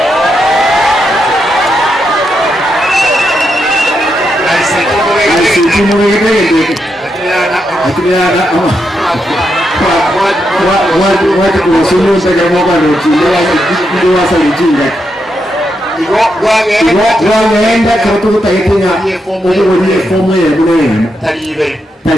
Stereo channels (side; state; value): both; normal; correlation 0.83